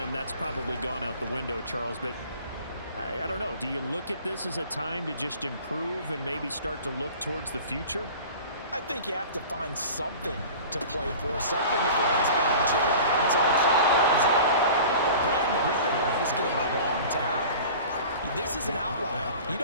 that's probably gone out the window, Charles, but I don't know. Do you look at this as a time to just improve and maybe start to look towards the future? I think you have to find something to play for, something to grasp onto until the clock runs out. But Brandon, we've been around this game a long time. This is an outlier. You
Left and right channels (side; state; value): both; inverted; correlation -0.41